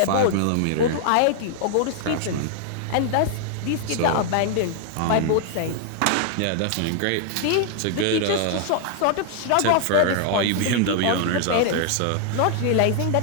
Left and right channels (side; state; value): both; different; correlation 0.00